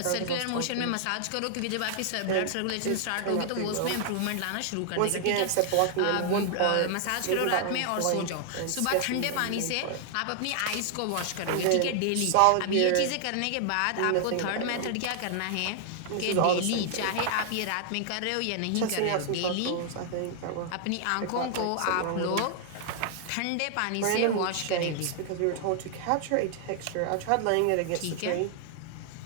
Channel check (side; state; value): both; different; correlation 0.00